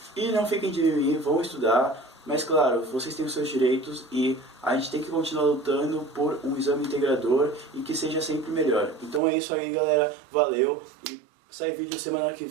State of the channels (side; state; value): left; drops out; at 9.2 s